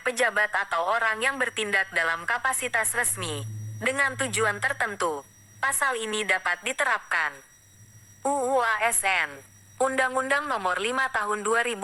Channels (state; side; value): identical; both; correlation 1.00